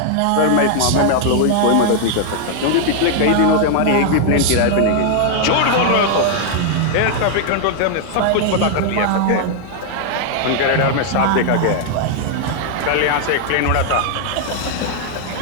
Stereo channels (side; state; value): both; different; correlation 0.00